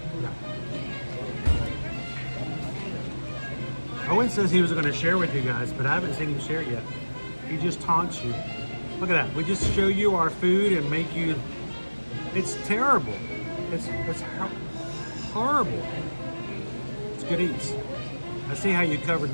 No. Owen says he was going to share with you guys, but I haven't seen him share yet. He just taunts you. Look at that. We just show you our food and make you... It's terrible. It's horrible. It's good eats. I see how you covered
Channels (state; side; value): inverted; both; correlation -1.00